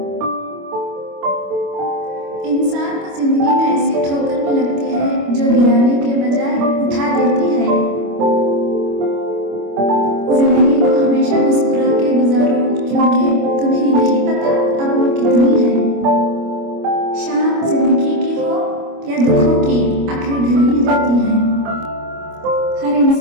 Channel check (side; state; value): left; late; 25 ms